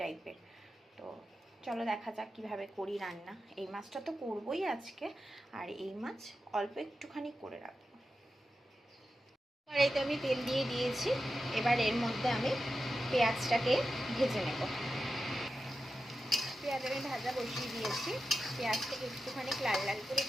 টাইপের। তো চলো দেখা যাক কীভাবে করি রান্না। এই মাছটা তো করবোই আজকে, আর এই মাছ অল্প একটুখানি করে রাখবো। কড়াইতে আমি তেল দিয়ে দিয়েছি, এবার এর মধ্যে আমি পেঁয়াজটাকে ভেজে নেব। পেঁয়াজ আমি ভাজা বসিয়ে দিয়েছি। পেঁয়াজটাকে একটুখানি লাল লাল করে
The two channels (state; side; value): normal; both; correlation 0.91